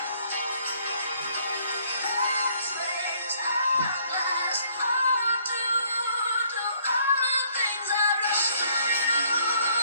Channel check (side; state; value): both; inverted; correlation -0.64